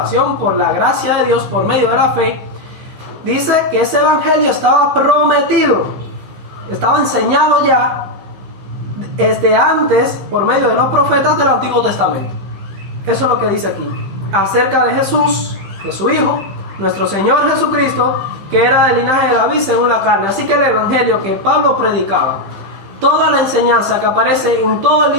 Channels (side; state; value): left; late; 15 ms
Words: por la gracia de Dios por medio de la fe, dice que ese evangelio estaba prometido, estaba enseñado ya desde antes por medio de los profetas del Antiguo Testamento. Eso es lo que dice aquí acerca de Jesús, de su Hijo, nuestro Señor Jesucristo, que era del linaje de David según la carne. Así que el evangelio que Pablo predicaba, toda la enseñanza que aparece en todo el